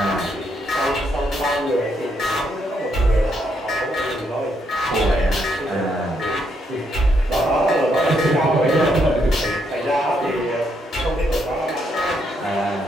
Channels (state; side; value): normal; both; correlation 0.76